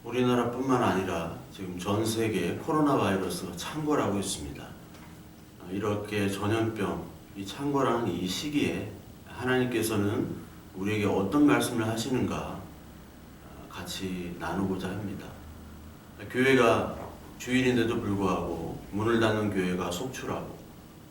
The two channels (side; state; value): both; identical; correlation 1.00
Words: 우리나라뿐만 아니라 지금 전 세계에 코로나 바이러스가 창궐하고 있습니다. 이렇게 전염병, 이 창궐하는 이 시기에 하나님께서는 우리에게 어떤 말씀을 하시는가 같이 나누고자 합니다. 교회가 주일인데도 불구하고 문을 닫는 교회가 속출하고,